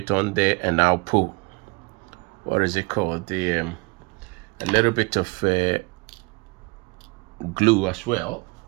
on there, and I'll pull, what is it called, the a little bit of glue as well.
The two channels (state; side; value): quieter; left; 28.6 dB